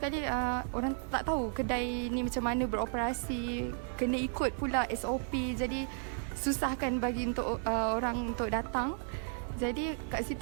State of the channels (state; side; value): silent; left; 55 dB below the other